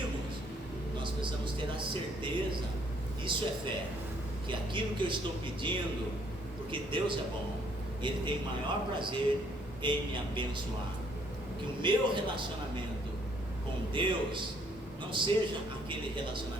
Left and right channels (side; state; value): both; normal; correlation 0.66